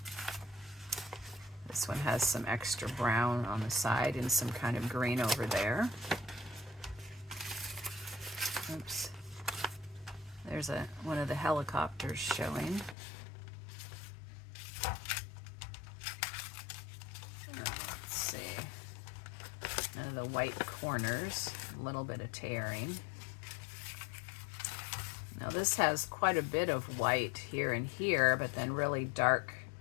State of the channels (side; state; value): right; drops out; at 13.0 s